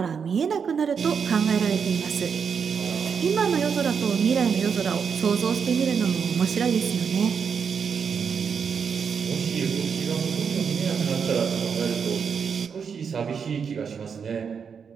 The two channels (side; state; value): left; quieter; 6.5 dB